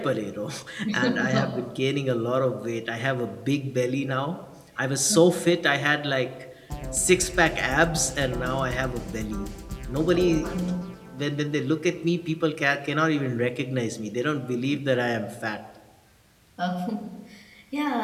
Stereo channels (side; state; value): both; identical; correlation 1.00